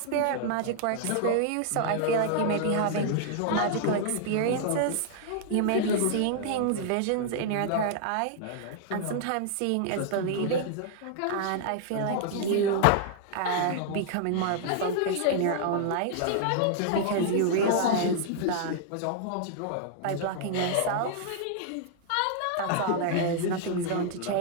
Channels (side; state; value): both; different; correlation -0.01